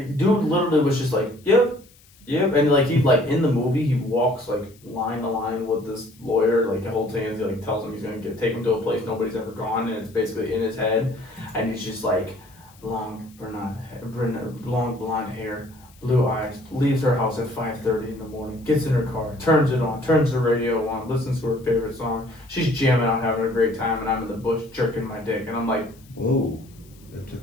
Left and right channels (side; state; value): left; noise; hiss, 28 dB below the sound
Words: Dude literally was just like, yep. And like he like in the movie he walks like line to line with this lawyer like the whole thing. He like tells him he's gonna take him to a place nobody's ever gone, and it's basically in his head. And he's just like long blonde hair, blue eyes, leaves her house at 5:30 in the morning, gets in her car, turns it on, turns the radio on, listens to her favorite song. She's jamming out, having a great time, and I'm in the bush jerking my dick, and I'm like, whoa, that